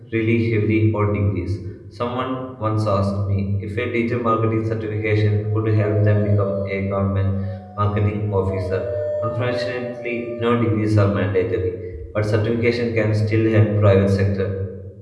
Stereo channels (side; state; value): both; identical; correlation 1.00